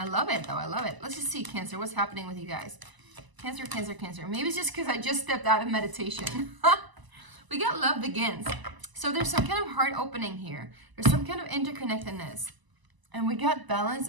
love it though, I love it. Let's just see, Cancer, what's happening with you guys? Cancer, Cancer, Cancer. Maybe it's just because I just stepped out of meditation. We got Love Begins. So there's some kind of heart opening here. There's some kind of interconnectedness. And we got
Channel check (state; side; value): late; left; 1.0 ms